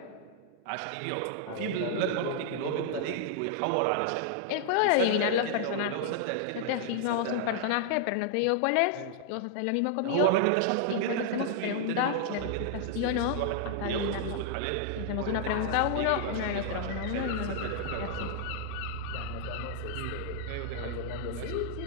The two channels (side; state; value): both; different; correlation -0.01